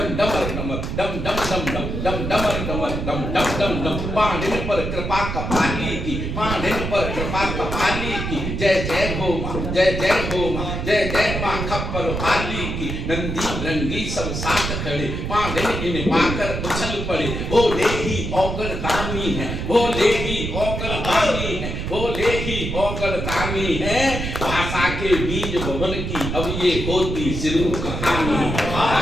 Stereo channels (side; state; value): right; noise; rumble, 4 dB below the sound